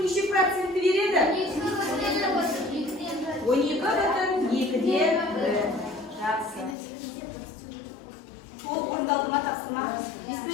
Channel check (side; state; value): right; drops out; at 6.8 s